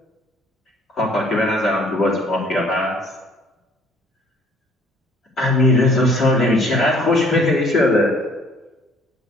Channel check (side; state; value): both; normal; correlation 0.58